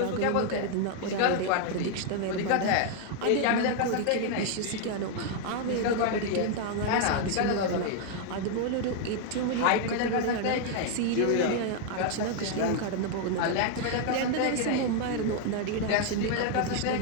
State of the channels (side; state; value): both; different; correlation 0.00